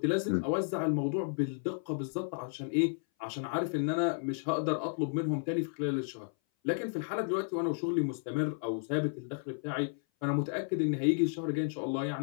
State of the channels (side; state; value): right; silent; 56 dB below the other